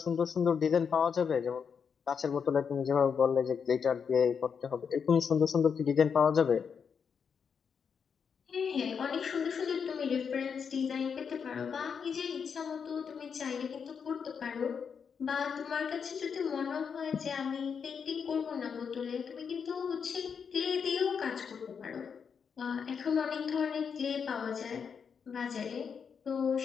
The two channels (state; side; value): quieter; right; 6.5 dB